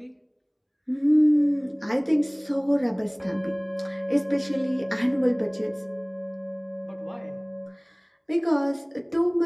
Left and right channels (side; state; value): both; identical; correlation 1.00